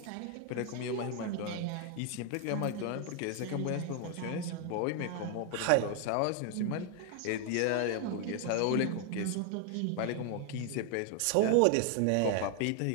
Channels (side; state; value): both; different; correlation 0.00